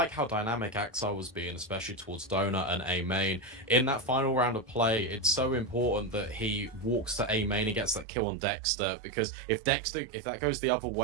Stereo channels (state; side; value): drops out; left; at 8.1 s